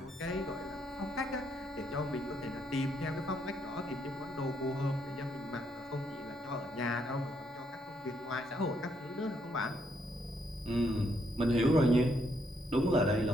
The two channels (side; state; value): both; normal; correlation 0.74